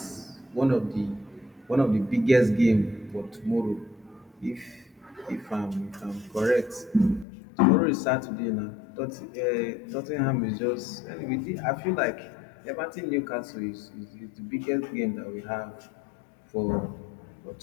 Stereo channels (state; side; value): drops out; right; at 7.2 s